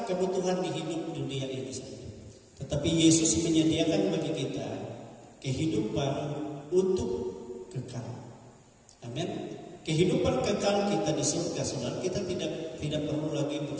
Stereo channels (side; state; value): both; identical; correlation 1.00